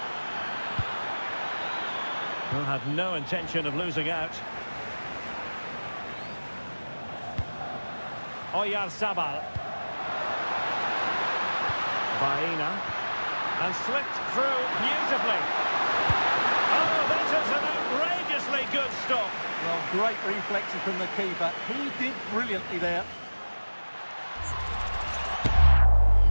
Well, had no intention of losing out. Oyarzabal. Baena. And slipped through beautifully. Oh, that is an outrageously good stop. Well, great reflexes from the keeper. He did brilliantly there.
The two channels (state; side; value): inverted; both; correlation -1.00